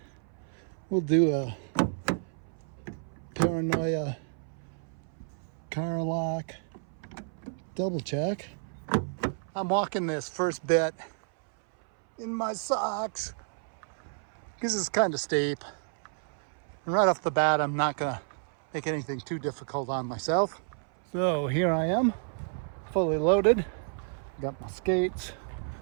We'll do a paranoia car lock double check. I'm walking this first bit in my socks because it's kind of steep. And right off the bat, I'm not gonna make anything too difficult on myself. So here I am, fully loaded. Got my skates,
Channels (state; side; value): silent; left; 58 dB below the other